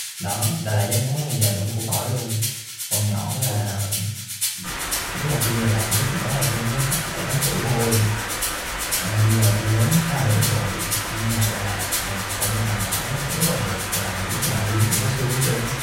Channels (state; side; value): identical; both; correlation 1.00